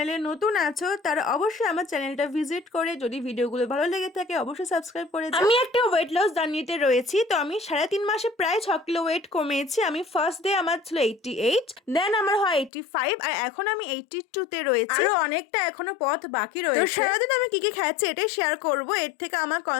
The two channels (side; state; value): right; drops out; at 12.7 s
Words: নতুন আছো তারা অবশ্যই আমার চ্যানেলটা ভিজিট করে যদি ভিডিওগুলো ভালো লেগে থাকে অবশ্যই সাবস্ক্রাইব করে যাও। আমি একটা ওয়েট লস জার্নিতে রয়েছি। তো আমি 3.5 মাসে প্রায় 6 কিলো ওয়েট কমিয়েছি। আমি ফার্স্ট ডে আমার ছিল 88, দেন আমার হয় 85, আর এখন আমি 82-তে রয়েছি। আরো অনেকটা এখনো পথ বাকি রয়েছে। তো সারাদিন আমি কি কি খাচ্ছি এটাই শেয়ার করব। এর থেকে আমার